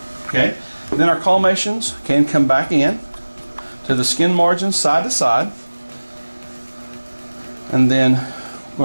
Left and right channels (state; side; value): inverted; both; correlation -1.00